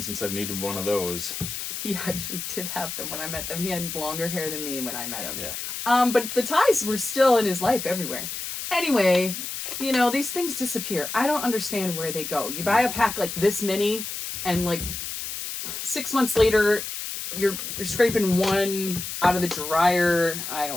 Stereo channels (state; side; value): noise; left; hiss, 6 dB below the sound